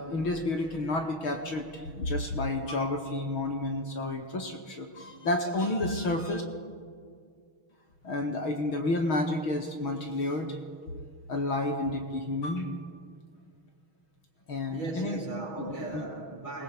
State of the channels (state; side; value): late; right; 6.3 ms